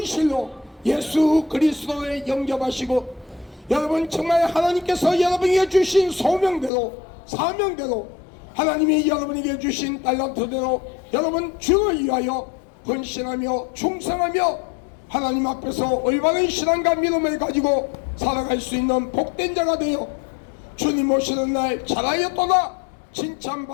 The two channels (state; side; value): drops out; right; at 6.7 s